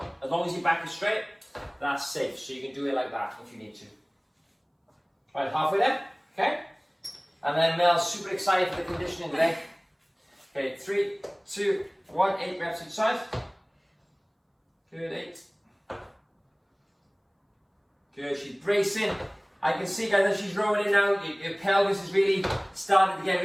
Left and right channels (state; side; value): identical; both; correlation 1.00